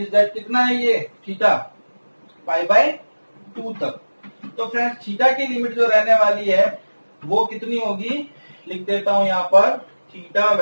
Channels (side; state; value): both; inverted; correlation -1.00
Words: दैट कितना है ये थीटा π/2 तक। तो फ्रेंड्स थीटा की लिमिट जो रहने वाली है वो कितनी होगी, लिख देता हूं यहाँ पर, थीटा